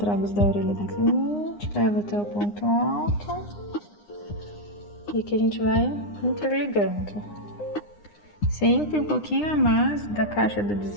da orelha da cliente, leva até o ponto alto, e aqui a gente vai interligando. Sempre um pouquinho a mais da caixa do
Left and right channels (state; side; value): late; right; 9.8 ms